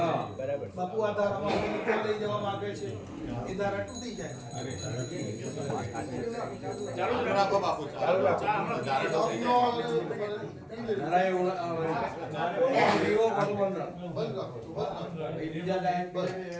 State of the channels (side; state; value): both; identical; correlation 1.00